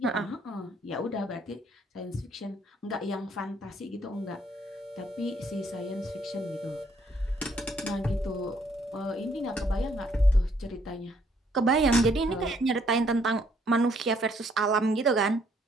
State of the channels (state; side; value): normal; both; correlation 0.67